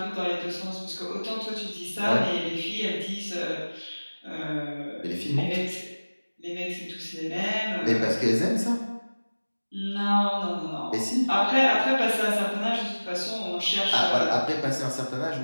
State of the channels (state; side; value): inverted; both; correlation -1.00